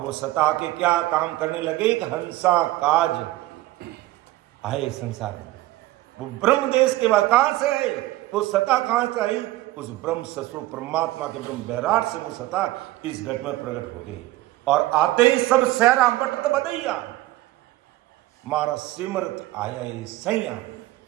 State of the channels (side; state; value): left; quieter; 17.3 dB